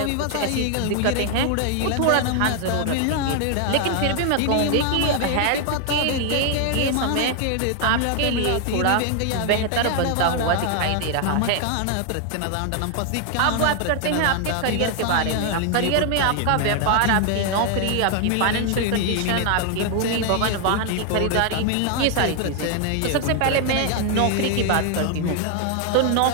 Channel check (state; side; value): different; both; correlation 0.00